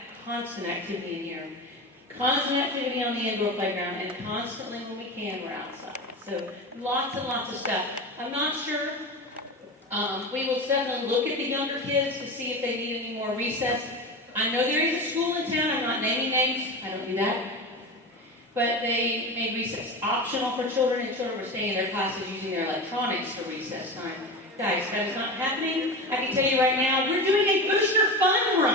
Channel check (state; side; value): normal; both; correlation 0.26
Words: constant activity in here. Constant activity on the indoor playground and constantly when we can, we're outside. So lots and lots of stuff. I'm not sure. We will definitely look at the younger kids to see if they need any more recess. I know there is a school in town. I'm not naming names. I don't do that. But they made recess optional for children, and children were staying in their classes using their electronics for recess time. Guys, that is not happening. I can tell you right now, we're doing a booster fun